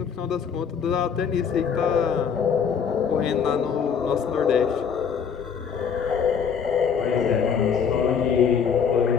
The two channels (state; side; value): quieter; right; 6.9 dB